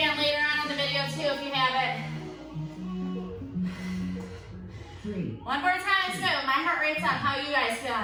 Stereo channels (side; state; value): both; identical; correlation 1.00